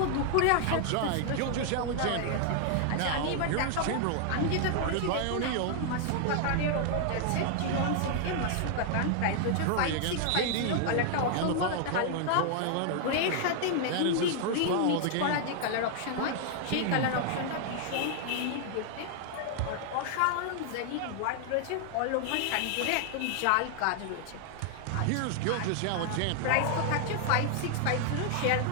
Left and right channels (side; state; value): both; different; correlation 0.00